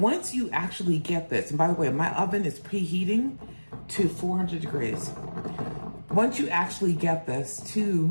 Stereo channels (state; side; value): inverted; both; correlation -1.00